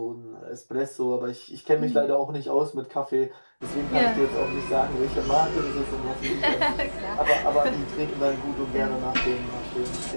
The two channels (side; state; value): both; inverted; correlation -1.00